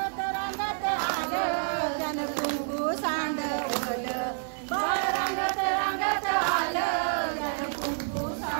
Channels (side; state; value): left; silent; 59 dB below the other